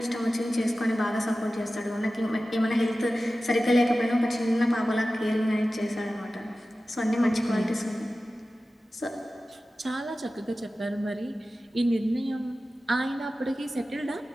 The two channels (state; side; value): normal; both; correlation 0.95